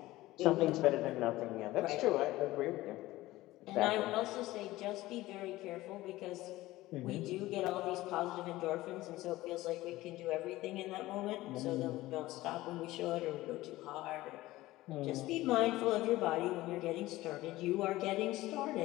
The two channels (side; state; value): right; quieter; 17.4 dB